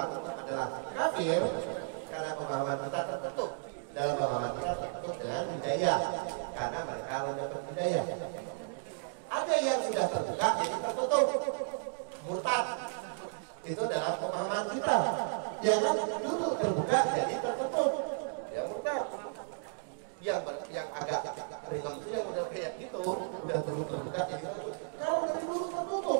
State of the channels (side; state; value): left; silent; digital silence